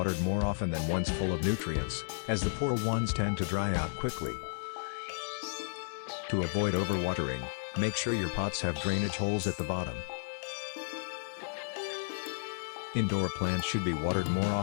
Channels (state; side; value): silent; right; digital silence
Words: more often than ones full of nutrients, as the poor ones tend to dry out quickly. To avoid overwatering, make sure your pots have drainage holes at the bottom. Indoor plants should be watered more